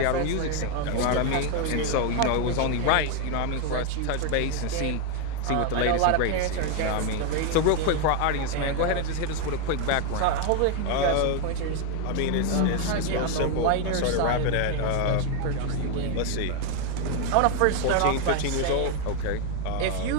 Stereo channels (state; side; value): different; both; correlation 0.01